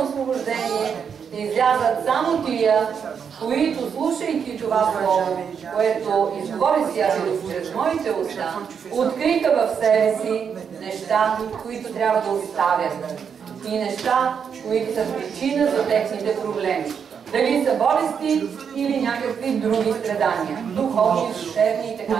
освобождение ще излязат само тия, които, слушайки това слово, което изговори Святият чрез моите уста, откриха в себе си неща, които трябва да оставят и неща, които са причина за техните проблеми. Дали са болести или някакви други страдания, духовни, душевни и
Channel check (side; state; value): left; quieter; 7.0 dB